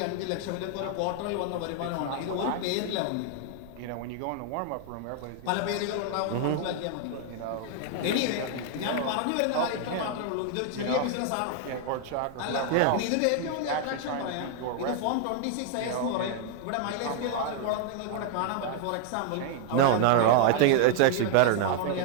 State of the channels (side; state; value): both; different; correlation 0.00